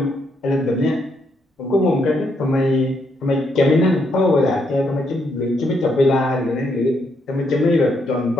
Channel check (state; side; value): normal; both; correlation 0.76